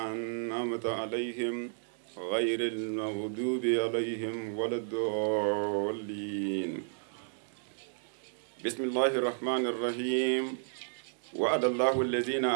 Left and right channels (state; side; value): silent; left; digital silence